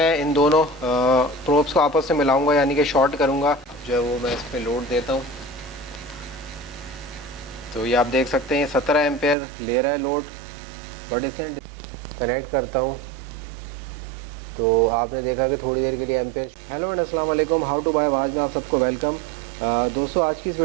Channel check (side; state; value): left; drops out; at 9.3 s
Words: इन दोनों प्रोब्स को आपस में मिलाऊंगा यानी कि शॉर्ट करूँगा, जो है वो मैं इस पर लोड देता हूँ। तो ये आप देख सकते हैं 17 एम्पेयर ले रहा है लोड, बट इसे कनेक्ट करता हूँ तो आपने देखा कि थोड़ी देर के लिए एम्पेयर। हेलो एंड अस्सलाम वालेकुम, हाउ टू बाय आवाज़ में आप सबको वेलकम। दोस्तों, आज की इस